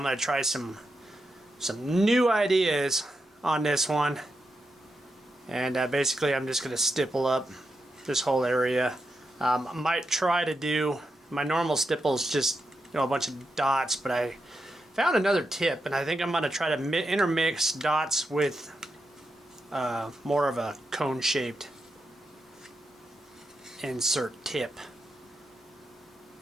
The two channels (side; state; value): both; normal; correlation 0.85